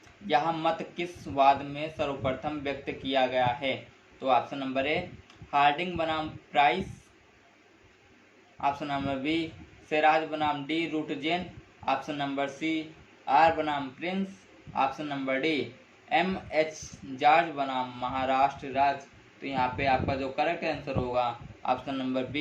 यह मत किस वाद में सर्वप्रथम व्यक्त किया गया है? तो ऑप्शन नंबर ए हार्डिंग बनाम प्राइस, ऑप्शन नंबर बी सेराज बनाम डी रूटजेन, ऑप्शन नंबर सी आर बनाम Prince, option number D M H. George बनाम महाराष्ट्र राज्य। तो यहाँ पे आपका जो करेक्ट आंसर होगा ऑप्शन नंबर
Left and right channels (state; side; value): identical; both; correlation 1.00